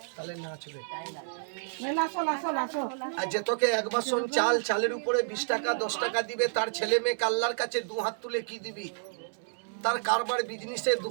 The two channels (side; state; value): left; silent; digital silence